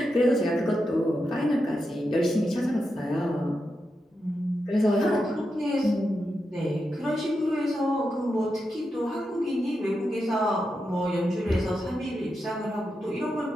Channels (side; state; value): both; normal; correlation 0.87